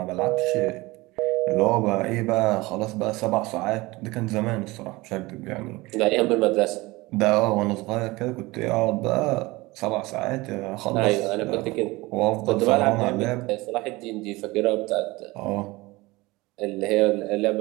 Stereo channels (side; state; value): left; quieter; 21.7 dB